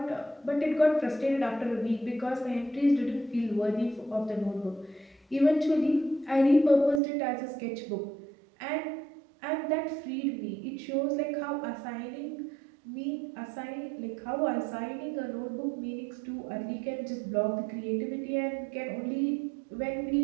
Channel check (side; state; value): left; drops out; at 7.0 s